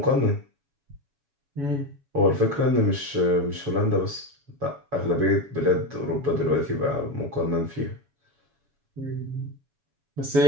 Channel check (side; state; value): left; late; 7.1 ms